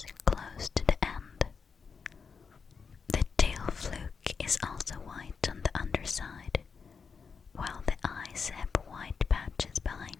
close to the end. The tail fluke is also white on the underside, while the eyes have white patches behind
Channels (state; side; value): quieter; right; 5.7 dB